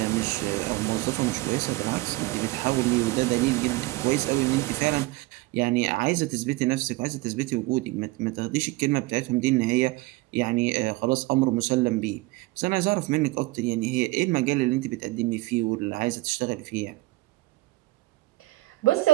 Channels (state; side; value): quieter; left; 20.9 dB